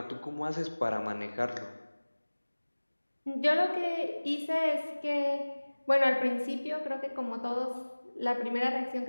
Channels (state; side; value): inverted; both; correlation -1.00